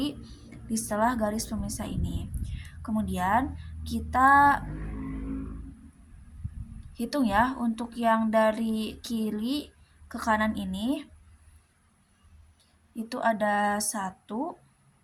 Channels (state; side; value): identical; both; correlation 1.00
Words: di setelah garis pemisah ini. Kemudian kita hitung ya untuk yang dari kiri ke kanan ini. Itu ada 1